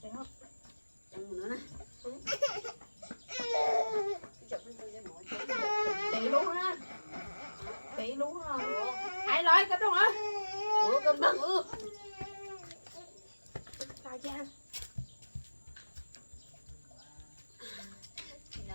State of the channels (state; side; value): inverted; both; correlation -1.00